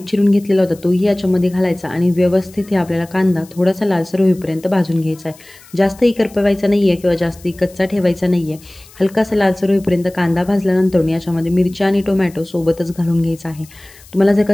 चिरून घेतलेला होता तोही याच्यामध्ये घालायचा आणि व्यवस्थित हे आपल्याला कांदा थोडासा लालसर होईपर्यंत भाजून घ्यायचा आहे. जास्तही करपवायचा नाही आहे किंवा जास्तही कच्चा ठेवायचा नाही आहे. हलकासा लालसर होईपर्यंत कांदा भाजल्यानंतर याच्यामध्ये मिरची आणि टोमॅटो सोबतच घालून घ्यायचा आहे. तुम्हाला जर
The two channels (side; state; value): left; noise; hiss, 24 dB below the sound